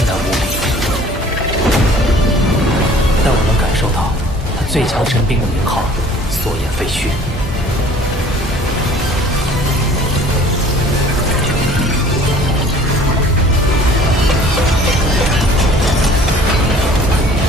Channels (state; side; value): normal; both; correlation 0.51